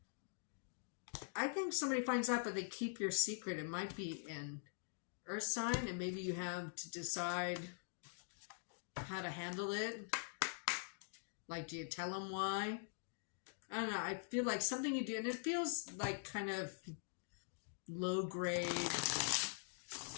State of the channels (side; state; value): right; silent; digital silence